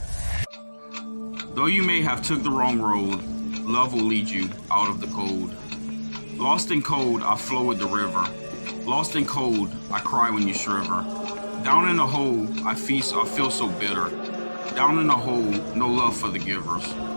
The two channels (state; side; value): inverted; both; correlation -1.00